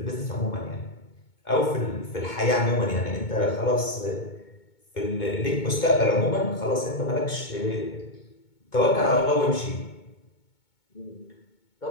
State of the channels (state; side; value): late; right; 2.2 ms